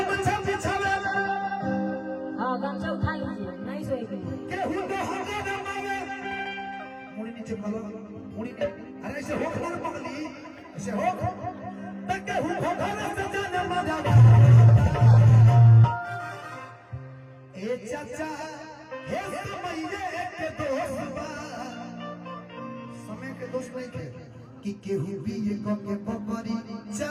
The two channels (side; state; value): both; identical; correlation 1.00